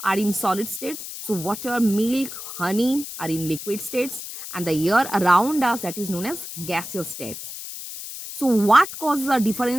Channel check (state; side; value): noise; left; hiss, 9 dB below the sound